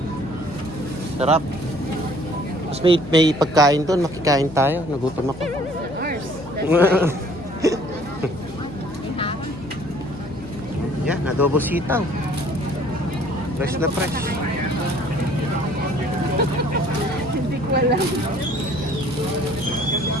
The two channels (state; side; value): noise; left; hum, 17 dB below the sound